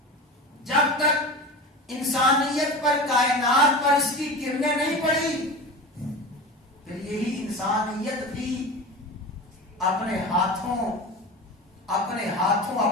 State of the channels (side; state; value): both; normal; correlation 0.30